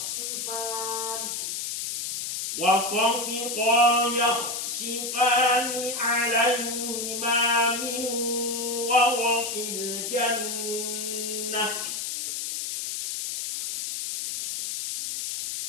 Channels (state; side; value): noise; left; hiss, 4 dB below the sound